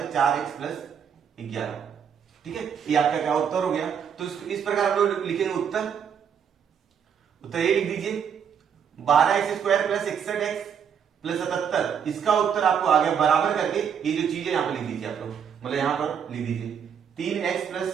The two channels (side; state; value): left; quieter; 7.7 dB